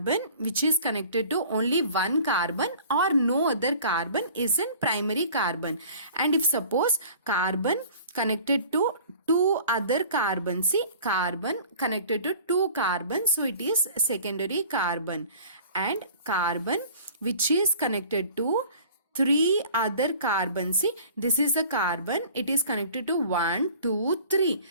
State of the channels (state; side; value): inverted; both; correlation -0.46